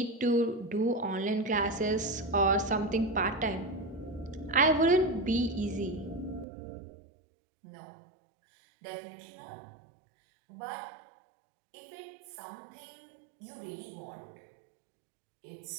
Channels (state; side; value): drops out; left; at 6.5 s